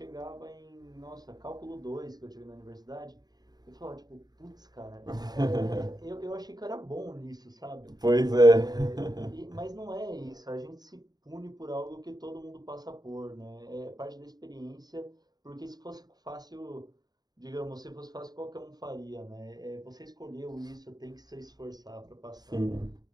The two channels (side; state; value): left; late; 0.19 ms